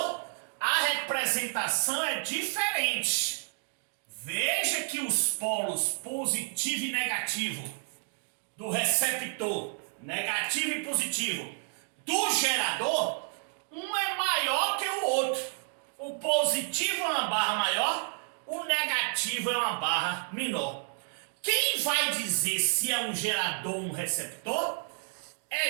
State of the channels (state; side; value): silent; left; 58 dB below the other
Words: a representação é diferente. Veja que os polos positivo e negativo do receptor, negativo e positivo, do gerador, um é maior que o outro. O positivo é uma barra maior, o negativo é uma barra menor. Quem vai dizer se é um gerador ou um receptor é